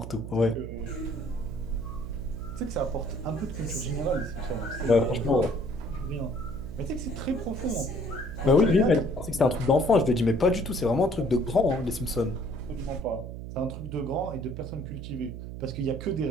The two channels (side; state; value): right; noise; hum, 9 dB below the sound